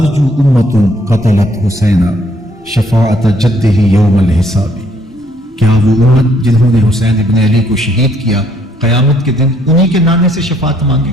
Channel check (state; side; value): normal; both; correlation 0.67